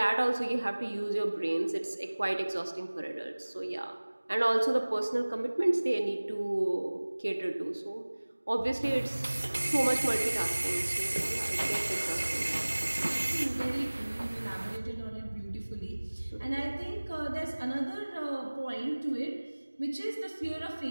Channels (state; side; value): inverted; both; correlation -1.00